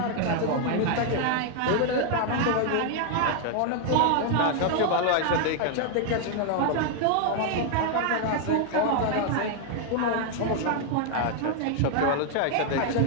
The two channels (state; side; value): different; both; correlation 0.00